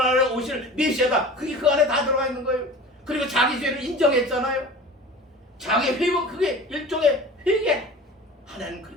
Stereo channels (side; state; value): both; normal; correlation 0.39